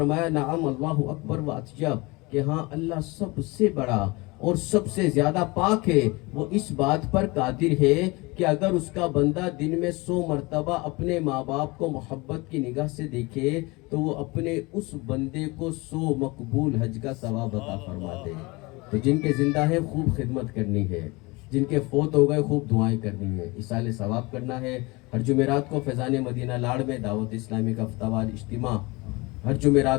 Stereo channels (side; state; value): right; quieter; 24.7 dB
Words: نعم اللہ اکبر و اطیب، کہ ہاں اللہ سب سے بڑا اور سب سے زیادہ پاک ہے، وہ اس بات پر قادر ہے کہ اگر اس کا بندہ دن میں 100 مرتبہ اپنے ماں باپ کو محبت کی نگاہ سے دیکھے تو وہ اپنے اس بندے کو 100 مقبول حج کا ثواب عطا فرما دے. تو جن کے زندہ ہے خوب خدمت کرنی ہے، جن کے فوت ہو گئے خوب دعائیں کرنی ہیں، ایصال ثواب کرنا ہے۔ ہر جمعرات کو فیضان مدینہ لاڑ میں دعوت اسلامی کا ہفتہ وار اجتماع ہر